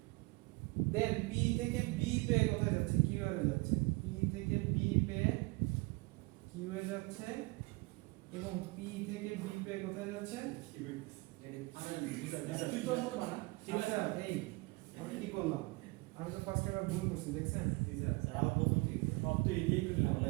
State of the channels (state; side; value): quieter; left; 25.8 dB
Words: দেন পি থেকে বি পে কোথায় যাচ্ছে কিউ এর যাচ্ছে পি থেকে বি পে কিউ এ যাচ্ছে এবং পি থেকে বি পে কোথায় যাচ্ছে তুই তো মতো বানা ঠিক আছে। আচ্ছা এই আমি কি করলাম আমি তো ফার্স্ট টাইম ভুল করছি দেখছেন সব তো এদিকেই করলাম